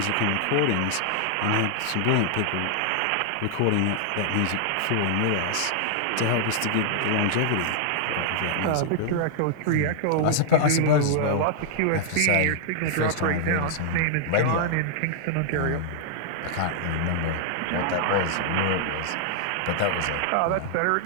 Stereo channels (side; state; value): both; different; correlation -0.01